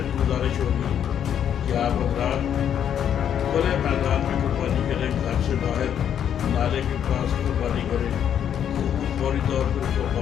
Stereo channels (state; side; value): quieter; right; 9.2 dB